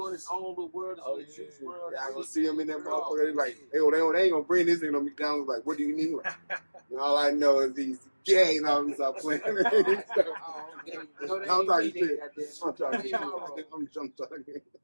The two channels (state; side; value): inverted; both; correlation -1.00